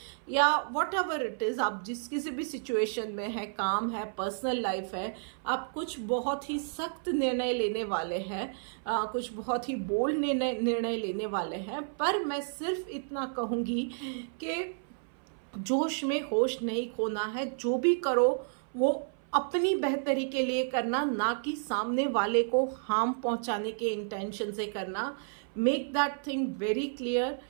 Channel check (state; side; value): silent; left; 57 dB below the other